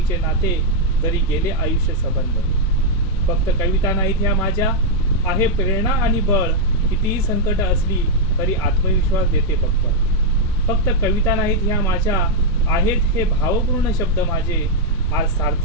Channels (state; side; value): normal; both; correlation -0.02